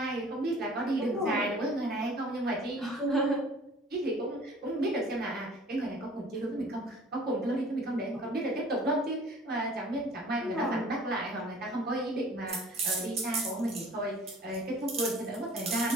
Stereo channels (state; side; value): normal; both; correlation 0.49